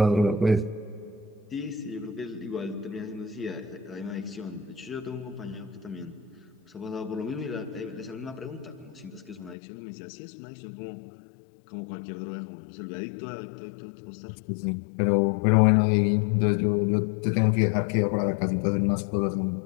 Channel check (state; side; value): drops out; right; at 9.6 s